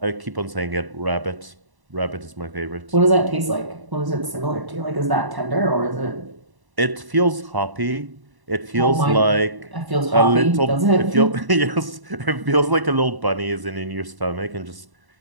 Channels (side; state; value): left; late; 1.1 ms